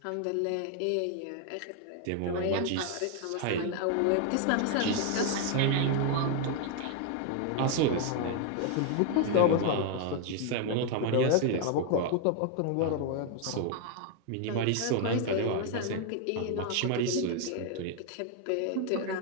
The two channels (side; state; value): both; different; correlation 0.01